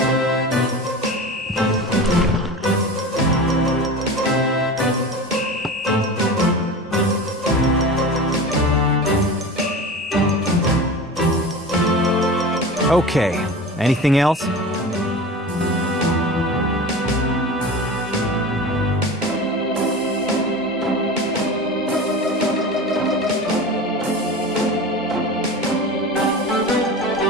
Okay, anything else?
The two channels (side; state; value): both; normal; correlation 0.32